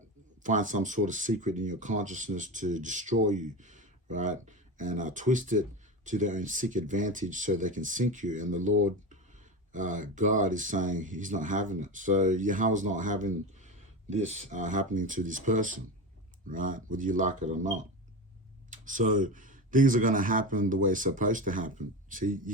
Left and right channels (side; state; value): both; normal; correlation 0.23